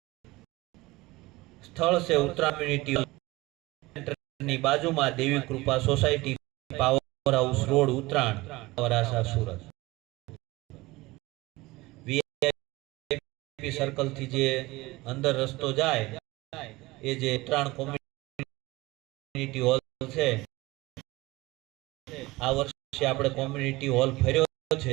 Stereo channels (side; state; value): left; quieter; 20.6 dB